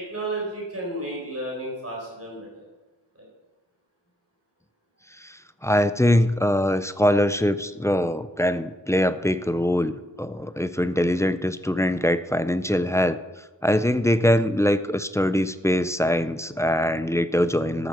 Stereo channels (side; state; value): both; normal; correlation 0.79